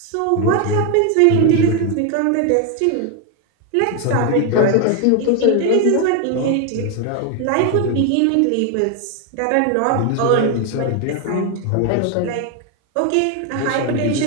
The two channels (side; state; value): both; different; correlation 0.01